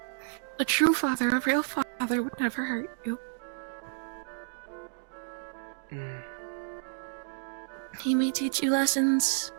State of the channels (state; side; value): silent; left; digital silence